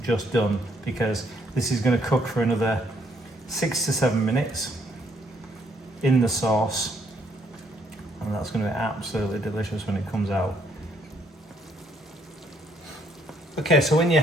just done, because this is going to cook for another 6 to 7 minutes in the sauce, and that's going to be absolutely delicious when it comes out. Okay, so when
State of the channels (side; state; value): both; normal; correlation 0.70